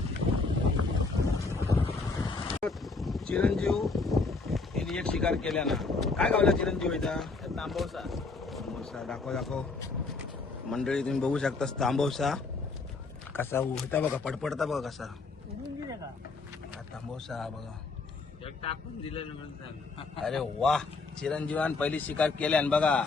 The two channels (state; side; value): quieter; right; 4.0 dB